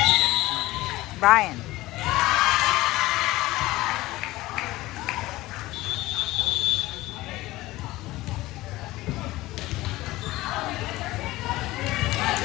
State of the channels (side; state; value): right; quieter; 18.3 dB